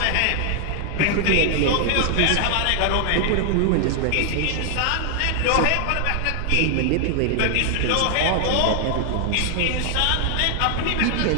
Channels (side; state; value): both; different; correlation 0.00